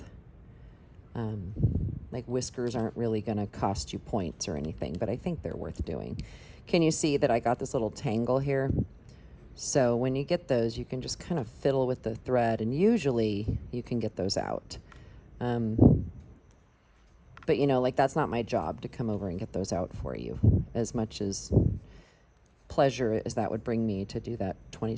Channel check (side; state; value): both; identical; correlation 1.00